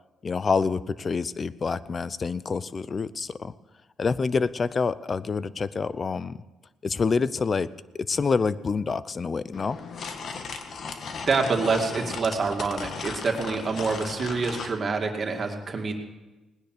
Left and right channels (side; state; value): both; normal; correlation 0.84